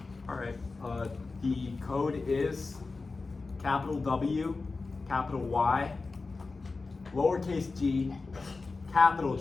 Alright. The code is capital W, capital Y, lowercase g, capital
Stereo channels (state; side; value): quieter; right; 3.9 dB